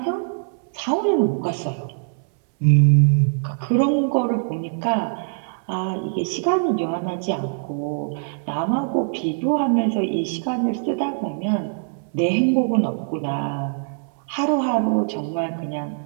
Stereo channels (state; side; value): silent; left; 63 dB below the other